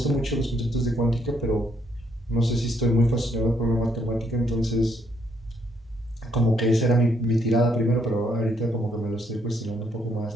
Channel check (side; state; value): both; normal; correlation 0.71